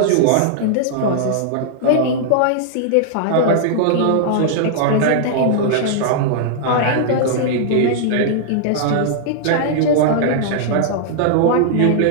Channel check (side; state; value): both; different; correlation -0.01